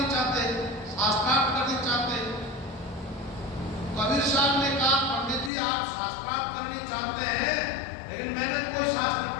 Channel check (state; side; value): drops out; right; at 5.5 s